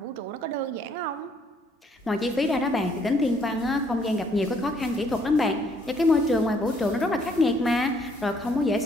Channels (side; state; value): both; normal; correlation 0.66